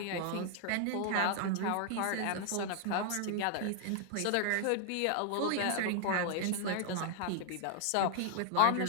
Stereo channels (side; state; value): both; different; correlation 0.00